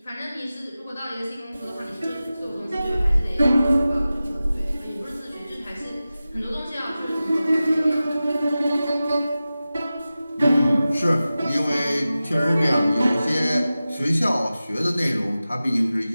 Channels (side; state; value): both; inverted; correlation -0.95